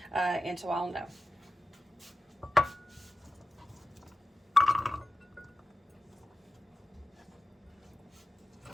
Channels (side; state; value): both; normal; correlation 0.93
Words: and so I'll know.